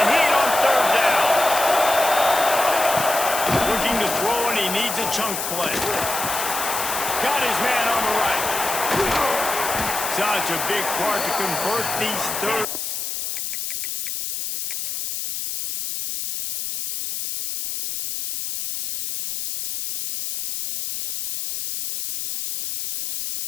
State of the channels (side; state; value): left; noise; hiss, 4 dB below the sound